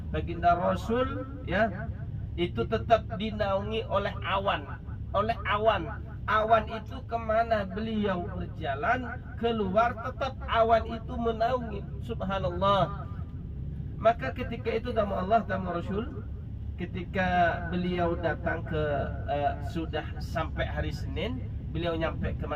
baginda Rasul, ya, itu tetap dinaungi oleh awan. Awan itu kemana beliau berjalan keluar, tetap awan itu menaungi. Subhanallah. Maka ketika itu tamu Allah, tamu Rasul, ketika beliau datang ke sudah sampai hari Senin, beliau nyampe ke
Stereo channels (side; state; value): both; identical; correlation 1.00